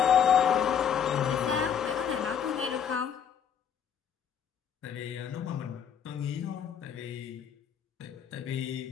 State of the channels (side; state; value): right; quieter; 8.0 dB